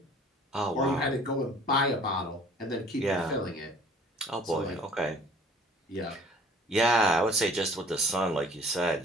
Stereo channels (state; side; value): normal; both; correlation 0.52